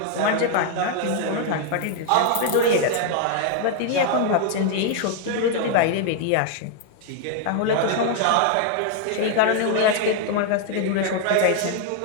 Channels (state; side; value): different; both; correlation 0.00